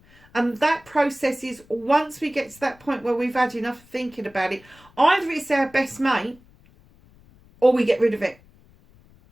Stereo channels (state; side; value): noise; left; rumble, 28 dB below the sound